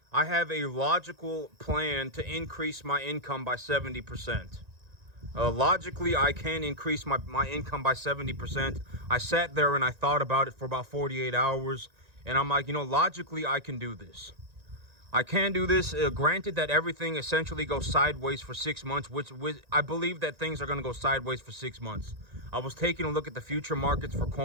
I have a logical plan to increase my income by 70%. Logically, I can increase my income by 70%. I sat there and I thought about it for about 48 hours. And I'm like, logically, I can do this. I can do this. Granted that everything essentially goes sideways for 6 months, which I believe that things are going to go sideways for 6 months. I was taking a look at the future markets for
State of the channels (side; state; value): left; late; 1.9 ms